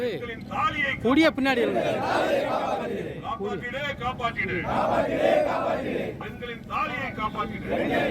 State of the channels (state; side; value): identical; both; correlation 1.00